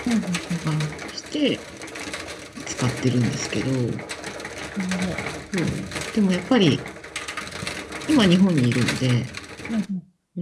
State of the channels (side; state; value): both; identical; correlation 1.00